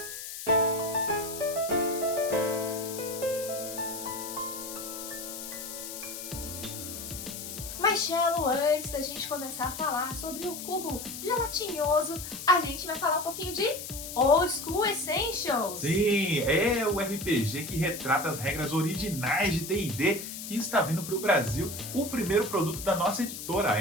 Mas, Cello, antes da gente começar a falar sobre o cubo gelatinoso, a gente vai falar um pouquinho de Old School Essentials. Sim, é o RPG que retrata as regras originais de D&D que está vindo para o Brasil. O primeiro produto da nossa editora, a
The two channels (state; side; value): noise; left; hiss, 9 dB below the sound